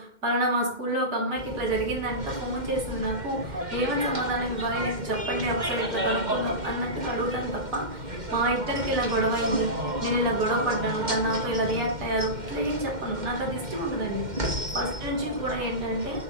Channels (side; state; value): left; late; 2.1 ms